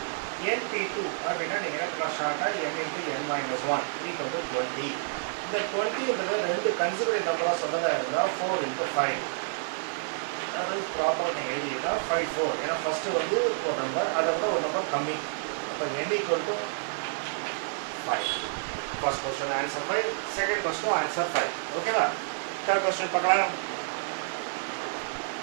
NP2 அப்படின்னா நீங்கள் ஷார்ட்டாக n into n minus 1 equal to 20. இந்த 20 ரெண்டு கன்சிடரேட் நம்பராக சொன்னதாக இருந்தால் 4 into 5. அதாவது ப்ராப்பராக நீங்கள் எழுதினா 5 4. ஏன்னா ஃபஸ்ட்டு வந்து ஒரு நம்பர் அதை விட ஒரு நம்பர் கம்மி. அப்போ n equal to 5. First question answer 5. Second question answer 5. ஓகேவா? Third question பார்க்கலாம்.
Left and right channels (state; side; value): silent; left; digital silence